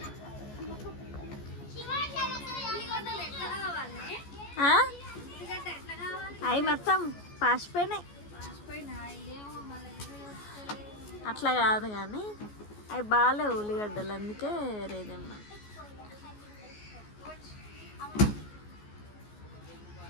అవి మొత్తం పాసిపోయినాయి. అట్లా కాదు కానీ అవి బాగాలేవు ఉల్లిగడ్డలు, అందుకే వేరేదేమ్మా.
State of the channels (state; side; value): late; right; 14 ms